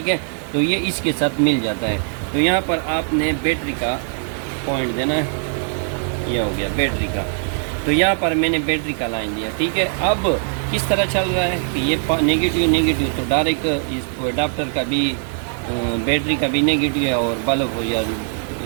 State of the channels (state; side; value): silent; left; 60 dB below the other